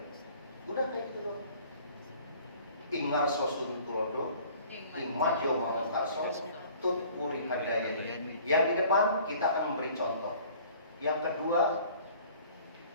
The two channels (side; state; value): both; inverted; correlation -0.51